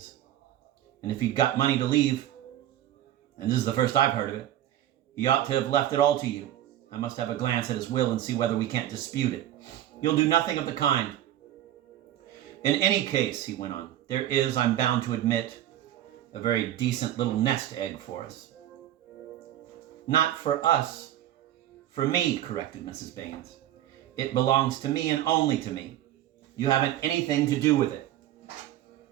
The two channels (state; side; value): quieter; left; 12.6 dB